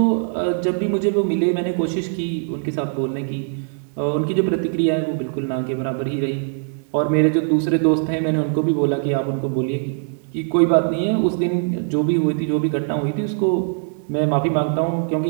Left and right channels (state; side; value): silent; left; 63 dB below the other